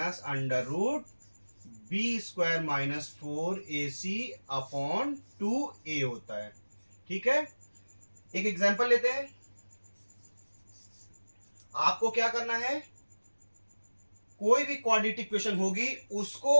under root b square minus 4ac upon 2a होता है। ठीक है, एक एग्जांपल लेते हैं। आपको क्या करना है, कोई भी क्वाड्रेटिक इक्वेशन होगी उसको,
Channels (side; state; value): both; inverted; correlation -1.00